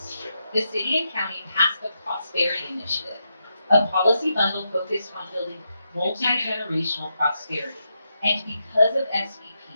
The city and county passed the Prosperity Initiative, a policy bundle focused on building multi-generational prosperity. And because of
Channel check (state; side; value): inverted; both; correlation -0.84